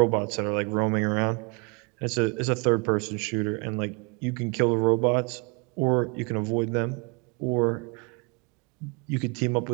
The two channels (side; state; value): left; quieter; 31.5 dB